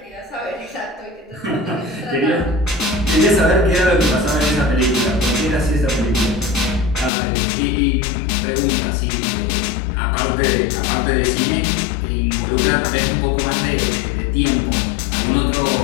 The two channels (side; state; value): right; drops out; at 7.1 s